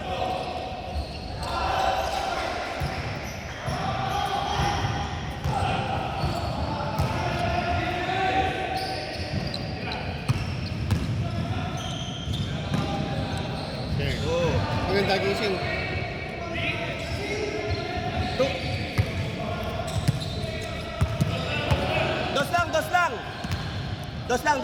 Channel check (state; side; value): identical; both; correlation 1.00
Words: Maganda gising. Dos lang, dos lang. Dos lang,